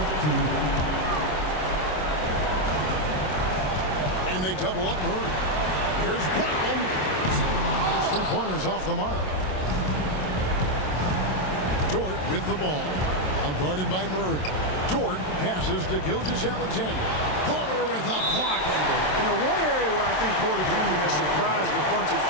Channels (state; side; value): late; right; 27 ms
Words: And they double up Murray. Here's Brown. His three-pointers off the mark. Dort with the ball. Out guarded by Murray. Dort passes to Gilgeous-Alexander. Porter with a block. You know, one area where I think Porter Jr. has surprised a bunch of